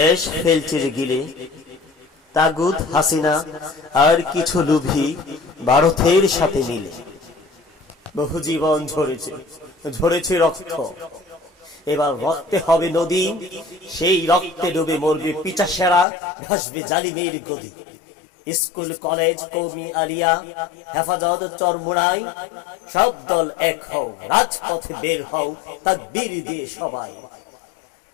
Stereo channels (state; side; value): drops out; right; at 16.1 s